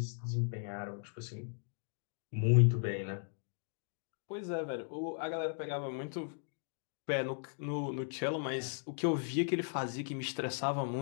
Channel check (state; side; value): silent; right; 53 dB below the other